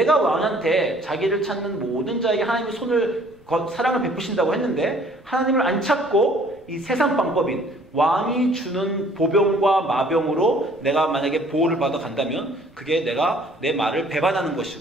왕한테 자기를 찾는 모든 자에게 하나님의 손을 사랑을 베푸신다고 했는데 하나님을 안 찾고 이 세상 방법인 왕이 주는 보병과 마병으로 내가 만약에 보호를 받아 간다면 그게 내가 내 말을 배반하는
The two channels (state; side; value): normal; both; correlation 0.57